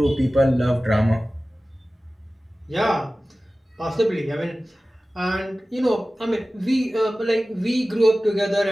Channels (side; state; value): both; normal; correlation 0.96